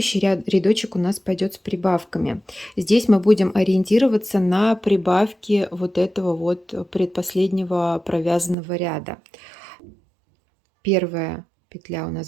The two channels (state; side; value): drops out; left; at 8.6 s